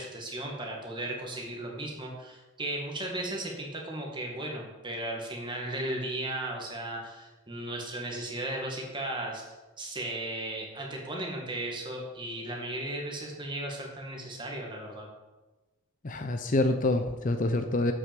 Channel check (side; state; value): both; normal; correlation 0.36